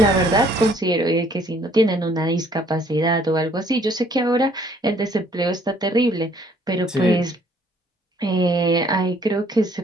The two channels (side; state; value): both; normal; correlation 0.62